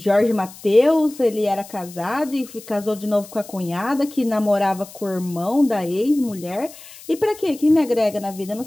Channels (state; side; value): noise; left; hiss, 18 dB below the sound